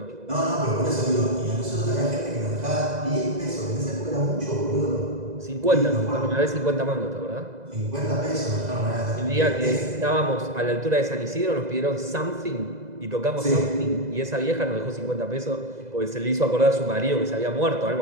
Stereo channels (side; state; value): left; late; 2.0 ms